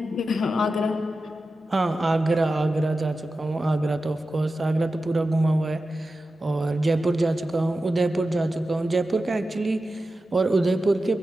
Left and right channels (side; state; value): both; normal; correlation 0.93